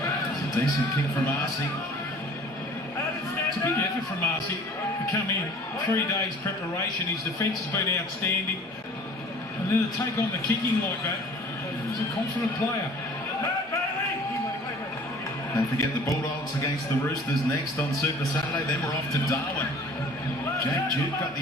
It's a decent kick from Arcee. It's a big effort from Arcee to come in. 3 days preparation. His defence has been outstanding. And then to take on the kicking like that, he's a confident player. Don't forget the Bulldogs against the Roosters next on Super Saturday. Then we're off to Darwin. Jake Duke got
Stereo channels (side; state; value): both; normal; correlation 0.49